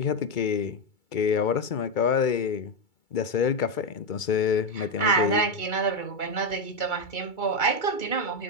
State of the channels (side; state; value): right; late; 2.3 ms